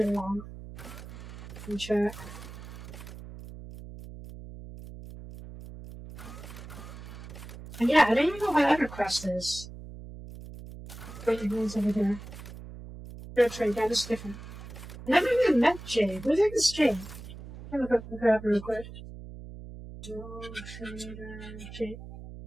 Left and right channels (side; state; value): right; noise; hum, 13 dB below the sound